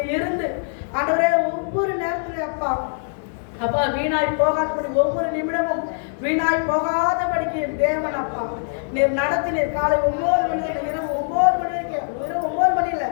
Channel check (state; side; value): silent; right; digital silence